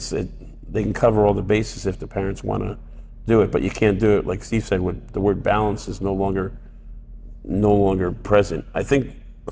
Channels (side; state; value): both; identical; correlation 1.00